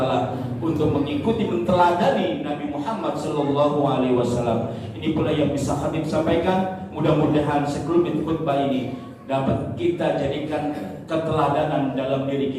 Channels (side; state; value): both; identical; correlation 1.00